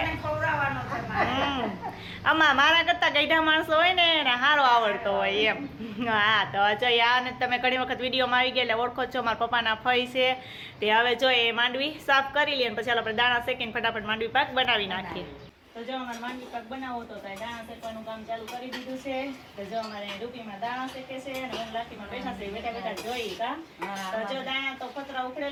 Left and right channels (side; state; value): both; identical; correlation 1.00